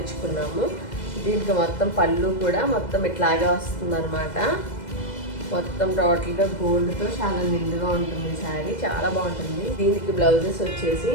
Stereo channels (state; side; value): late; right; 2.0 ms